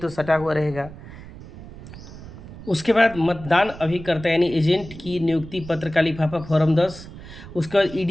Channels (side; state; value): right; noise; rumble, 15 dB below the sound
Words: सटा हुआ रहेगा। उसके बाद मतदान अभिकर्ता यानी एजेंट की नियुक्ति पत्र का लिफाफा फॉर्म 10। उसके बाद